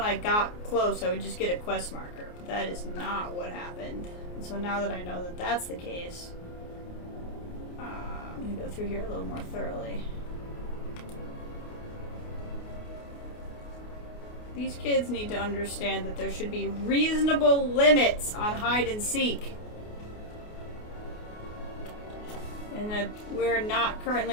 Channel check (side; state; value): right; late; 28 ms